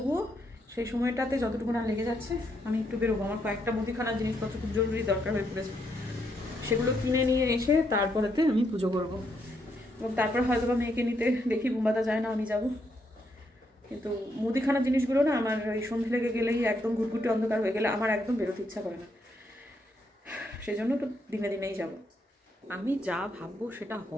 সেই সময়টাতে যতটুকু না লেগে যাচ্ছে আমি একটু বেরোবো। আমার কয়েকটা মুদিখানার জিনিসপত্র খুব জরুরি দরকার হয়ে পড়েছে, সেগুলো কিনে নিয়ে এসে তারপরেতে আমি পুজো করব। এবং তারপর হয়তো বা মেয়েকে নিতে দেখি বুম্বাদা যায় না, আমি যাব। কিন্তু মুদিখানার জিনিসগুলো না আমার ওই সন্ধে লেগে গেলেই, একদম ঘুটঘুটে অন্ধকার হয়ে গেলে আমার একদম বেরোতে ইচ্ছা করে না, সেই জন্য তো দিনে দিনেই যাব। আমি যা ভাববো সেটা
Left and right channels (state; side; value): normal; both; correlation 0.77